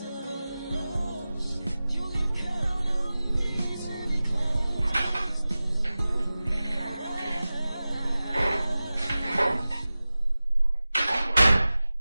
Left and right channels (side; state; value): both; inverted; correlation -0.96